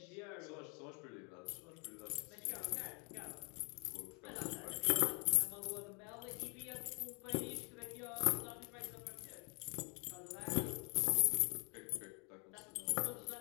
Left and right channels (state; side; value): quieter; right; 34.0 dB